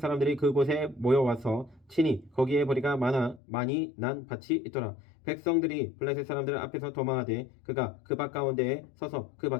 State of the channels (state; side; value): drops out; right; at 3.4 s